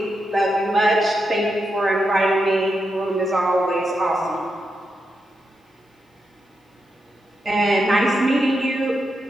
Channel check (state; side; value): normal; both; correlation 0.85